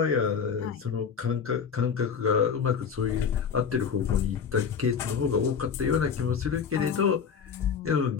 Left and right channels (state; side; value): quieter; right; 6.6 dB